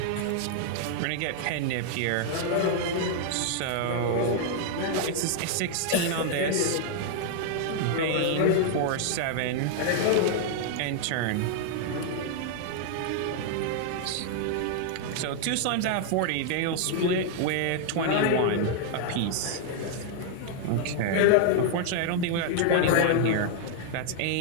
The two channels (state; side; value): different; both; correlation 0.00